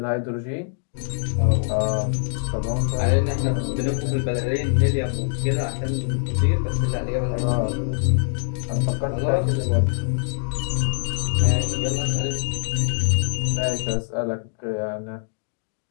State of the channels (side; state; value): right; silent; digital silence